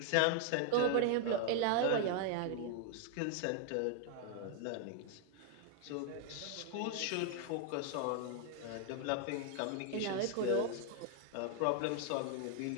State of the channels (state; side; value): different; both; correlation 0.00